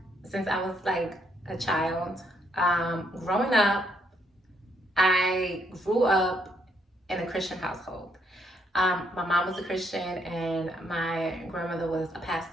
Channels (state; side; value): normal; both; correlation 0.73